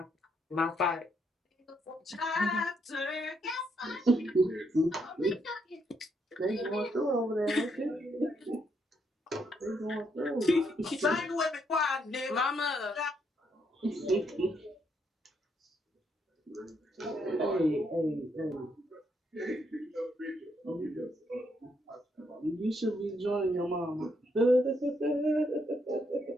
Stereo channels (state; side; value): normal; both; correlation 0.75